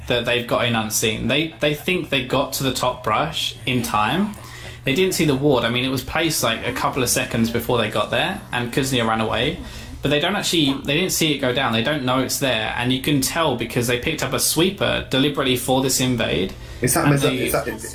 that they've got in unseen. They think they got to the top brush in time. They didn't see the ward. I mean, it was placed like a couple of seconds before they got there, and Kuznia ran away. But they didn't see it go down. They don't know it's there, and you can tell because they picked up a sweeper deliberately for this invade. Is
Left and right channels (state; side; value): identical; both; correlation 1.00